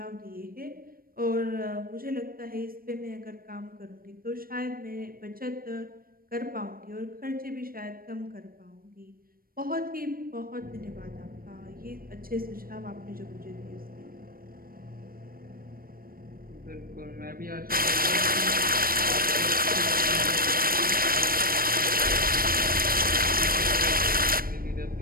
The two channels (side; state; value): left; late; 0.42 ms